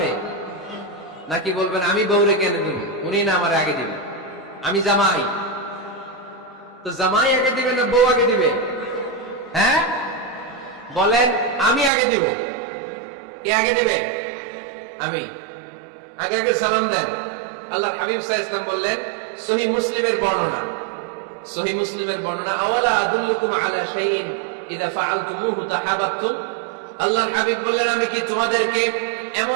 নাকি বলবেন আমি বউরে কেন দিব, উনি না আমার আগে দিবে? আমি জামাই, তো জামাই আগে দিবে না বউ আগে দিবে? হ্যাঁ বলেন, আমি আগে দিব। কে আগে দিবে? আমি। আগে আগে সালাম দেন। আল্লাহর হাবিব সাল্লাল্লাহু আলাইহি ওয়াসাল্লাম বললেন, সহিহ মুসলিমের বর্ণনা, সহিহ মুসলিমের বর্ণনা, আওয়ালা আদুল্লুকুম আলা শাইইন ইযা ফাআলতুমুহু তাহাব্বাতুম। আল্লাহর হাবিব বললেন, আমি কি তোমাদেরকে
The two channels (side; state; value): left; drops out; at 11.9 s